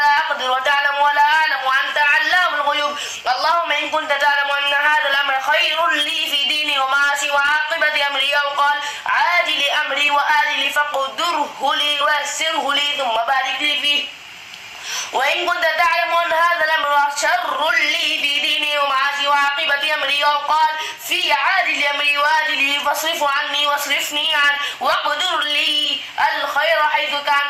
أقدر وتعلم ولا أعلم وأنت علام الغيوب. اللهم إن كنت تعلم أن هذا الأمر خير لي في ديني ومعاشي وعاقبة أمري أو قال عاجل أمري وآجل فقدره لي ويسره لي ثم بارك لي فيه. وإن كنت تعلم أن هذا الأمر شر لي في ديني ومعاشي وعاقبة أمري أو قال في عاجل أمري وآجله فاصرف عني واصرفني عنه واقدر لي الخير حيث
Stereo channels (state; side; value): identical; both; correlation 1.00